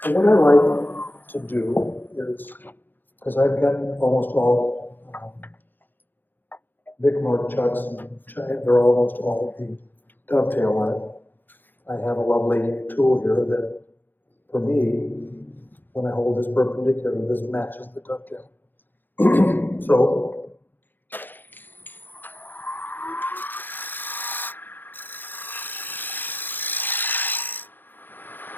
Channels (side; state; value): right; late; 0.091 ms